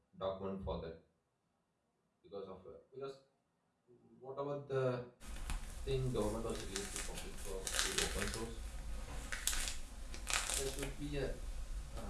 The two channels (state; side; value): identical; both; correlation 1.00